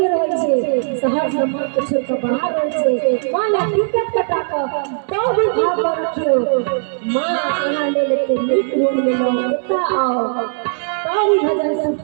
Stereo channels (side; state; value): left; silent; 67 dB below the other